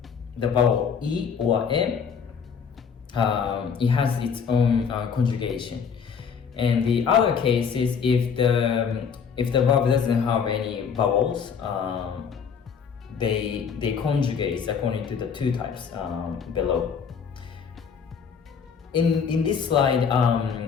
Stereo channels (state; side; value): quieter; right; 6.6 dB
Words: the vowel E or M, it has its own conjugation. And the other case is if the verb doesn't have any vowels, they conjugate according to the two types below. In this slide,